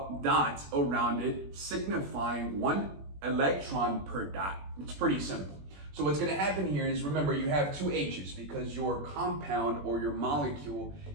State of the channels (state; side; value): late; left; 21 ms